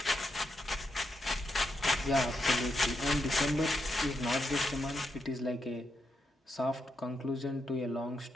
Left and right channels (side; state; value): both; normal; correlation 0.83